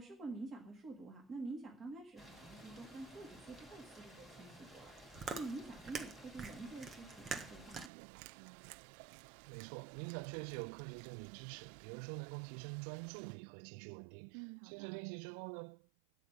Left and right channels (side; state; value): left; drops out; at 7.9 s